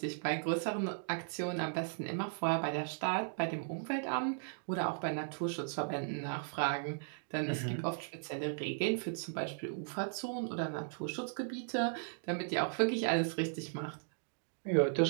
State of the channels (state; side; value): silent; left; digital silence